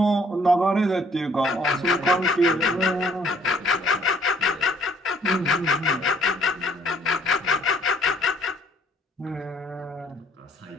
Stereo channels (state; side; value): normal; both; correlation 0.62